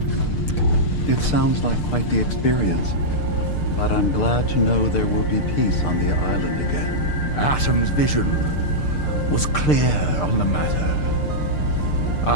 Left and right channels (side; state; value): right; late; 6.7 ms